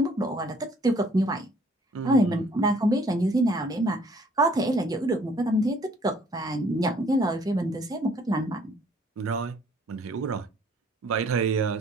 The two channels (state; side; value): normal; both; correlation 0.59